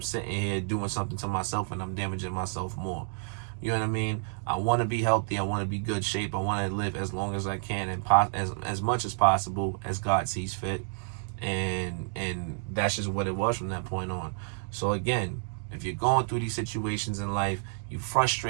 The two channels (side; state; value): left; silent; 58 dB below the other